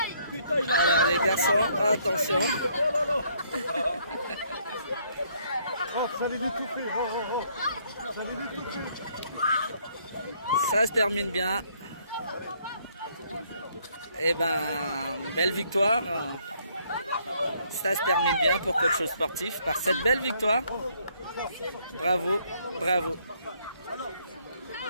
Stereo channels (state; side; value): inverted; both; correlation -0.68